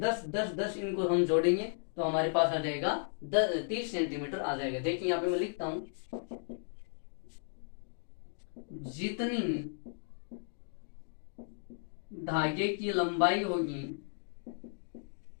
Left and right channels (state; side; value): silent; right; digital silence